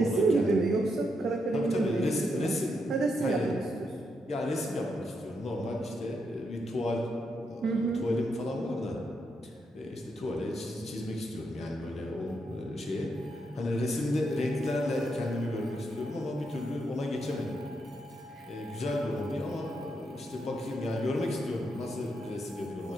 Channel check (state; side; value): normal; both; correlation 0.81